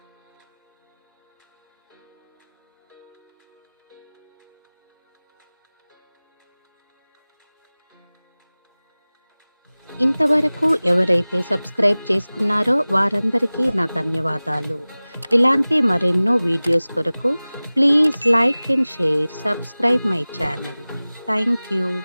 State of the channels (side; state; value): both; inverted; correlation -0.99